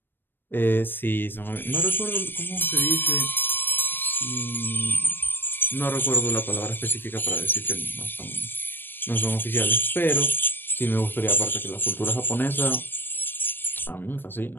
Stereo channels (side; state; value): right; late; 0.096 ms